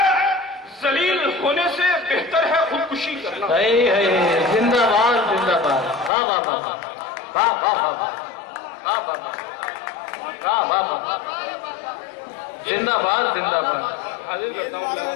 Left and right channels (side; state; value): right; drops out; at 6.1 s